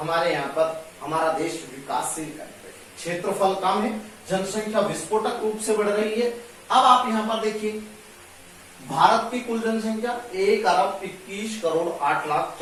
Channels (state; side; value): identical; both; correlation 1.00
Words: यहाँ पर हमारा देश विकासशील कंट्री है, क्षेत्रफल कम है, जनसंख्या विस्फोटक रूप से बढ़ रही है। अब आप यहाँ पर देखिए, भारत की कुल जनसंख्या